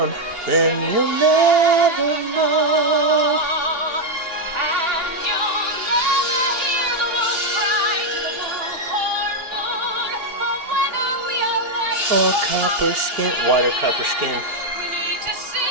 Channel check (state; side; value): late; left; 2.8 ms